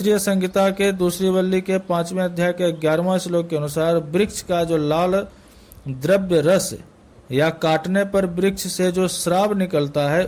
संहिता के दूसरी वल्ली के 5वें अध्याय के 11वें श्लोक के अनुसार वृक्ष का जो लाल द्रव्य रस या काटने पर वृक्ष से जो श्राव निकलता है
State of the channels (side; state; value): both; identical; correlation 1.00